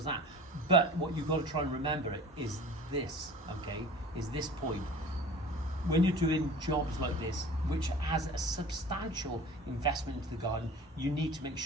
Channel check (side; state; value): both; normal; correlation 0.41